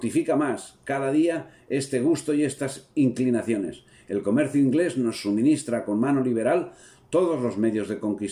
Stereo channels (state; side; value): identical; both; correlation 1.00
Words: más cada día este gusto y estas inclinaciones. El comercio inglés nos suministra con mano liberal todos los medios de